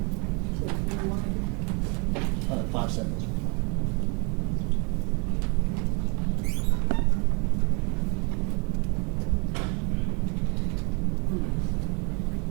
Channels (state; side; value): quieter; left; 33.3 dB